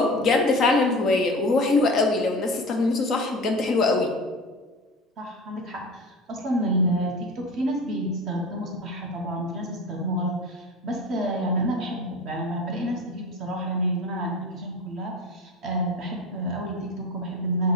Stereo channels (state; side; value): normal; both; correlation 0.33